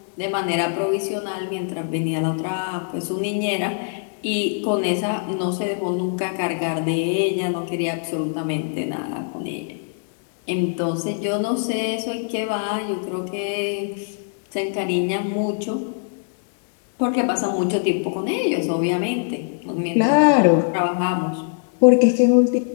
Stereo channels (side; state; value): right; silent; digital silence